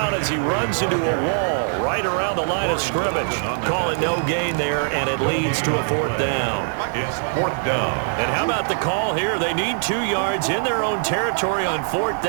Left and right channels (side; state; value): left; silent; digital silence